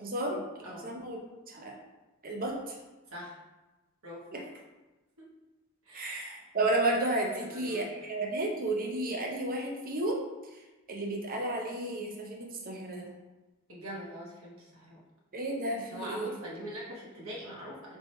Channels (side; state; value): both; normal; correlation 0.04